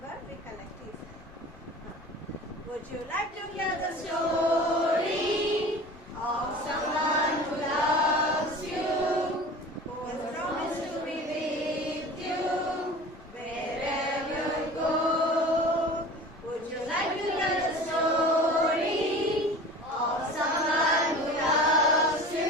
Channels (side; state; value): both; normal; correlation 0.38